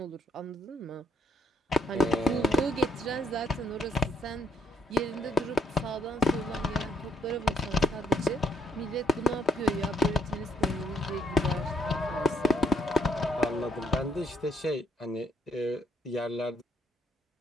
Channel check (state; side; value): normal; both; correlation 0.72